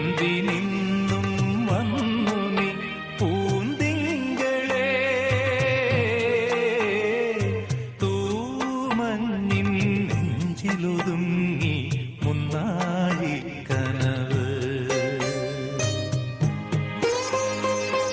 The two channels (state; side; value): identical; both; correlation 1.00